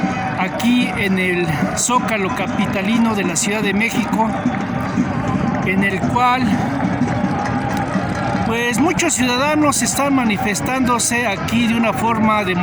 aquí en el Zócalo capitalino de la Ciudad de México, en el cual pues muchos ciudadanos están manifestándose aquí de una forma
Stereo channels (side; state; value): both; identical; correlation 1.00